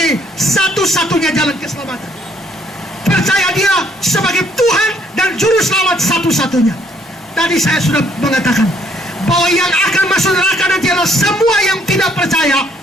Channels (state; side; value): normal; both; correlation 0.67